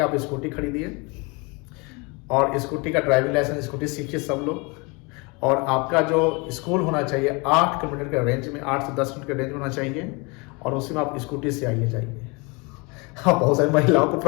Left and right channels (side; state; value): right; quieter; 28.8 dB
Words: आप स्कूटी खरीदिए और स्कूटी का ड्राइविंग लाइसेंस, स्कूटी सीखिए सब लोग, और आपका जो स्कूल होना चाहिए 8 किलोमीटर के रेंज में, 8 से 10 किलोमीटर के रेंज में होना चाहिए, और उसी में आप स्कूटी से आइए जाइए. हाँ, बहुत सारी महिलाओं को